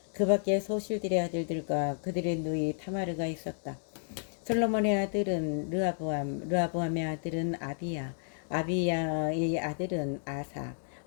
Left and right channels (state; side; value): silent; right; digital silence